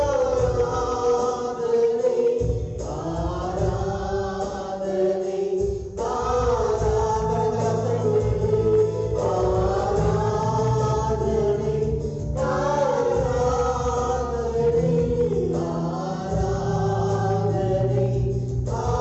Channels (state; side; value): identical; both; correlation 1.00